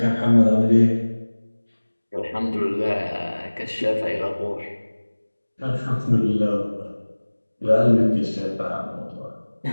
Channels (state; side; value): inverted; both; correlation -1.00